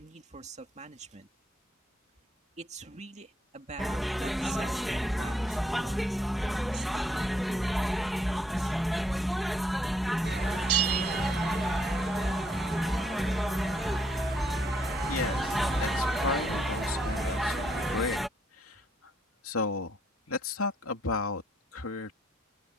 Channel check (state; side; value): normal; both; correlation 0.72